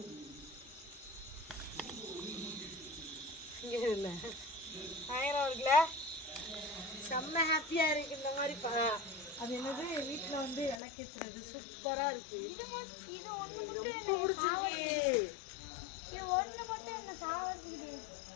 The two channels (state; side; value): drops out; right; at 10.8 s